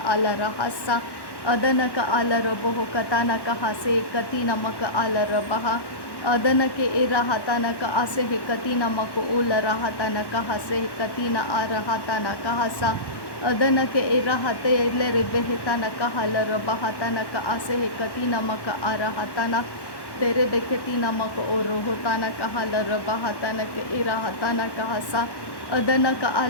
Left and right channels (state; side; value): late; right; 1.1 ms